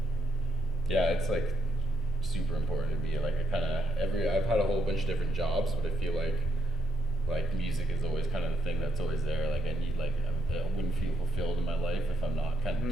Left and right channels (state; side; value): normal; both; correlation 0.77